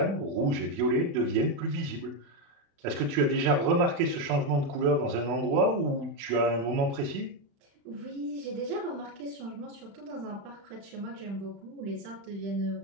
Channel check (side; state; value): left; late; 36 ms